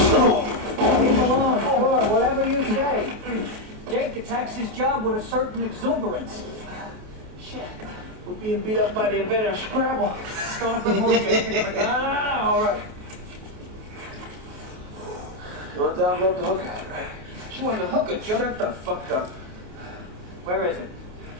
Leave him alone, sure, whatever you say. Jake attacks his job with a certain exuberance. Shit. We're being beat up by the inventor of Scrabble. Going up the moon, Jake. No, all right. You want the envelope to hook out, right? She wanted to hook her, Joe. Shut the fuck up. Where is it?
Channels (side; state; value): left; late; 28 ms